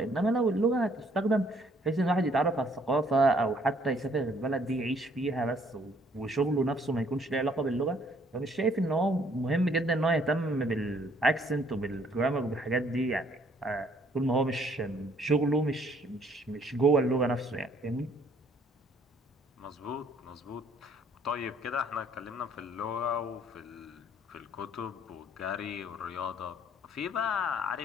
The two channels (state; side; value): normal; both; correlation 0.63